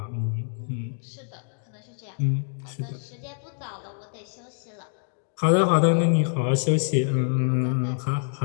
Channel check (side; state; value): right; silent; digital silence